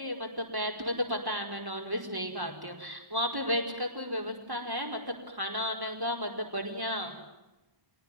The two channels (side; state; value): left; late; 1.1 ms